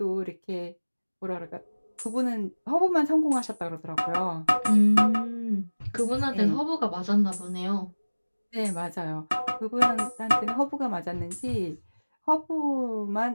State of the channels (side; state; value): both; inverted; correlation -1.00